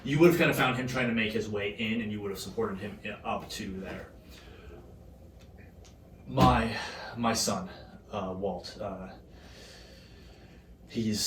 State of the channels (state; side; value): identical; both; correlation 1.00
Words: you would have kind of found him trying to make his way in, and you would have supported him up to there. My son, Walt,